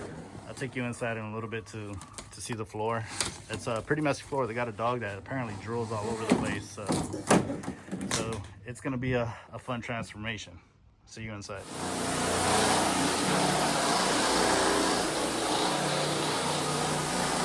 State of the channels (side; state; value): both; identical; correlation 1.00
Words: I'll take you inside in a little bit to see the floor. It's a pretty messy floor. They got a dog that apparently drools all over the place, so it's gonna be a fun transformation. See you inside.